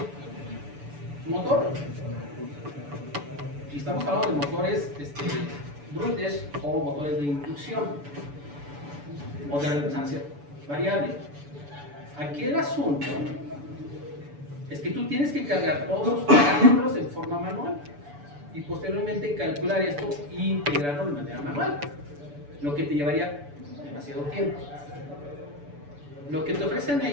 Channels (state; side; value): late; left; 6.9 ms